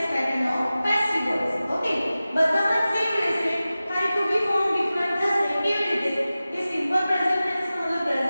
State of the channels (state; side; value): inverted; both; correlation -0.96